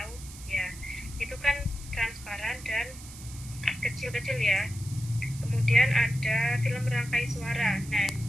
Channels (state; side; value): noise; right; hiss, 16 dB below the sound